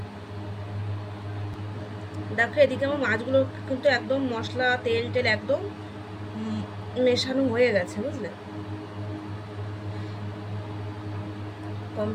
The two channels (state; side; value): identical; both; correlation 1.00